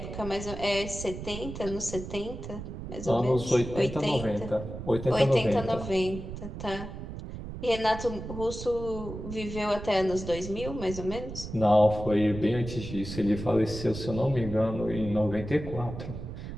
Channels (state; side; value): noise; right; rumble, 9 dB below the sound